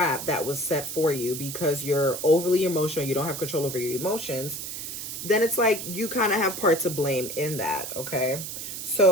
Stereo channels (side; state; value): right; noise; hiss, 7 dB below the sound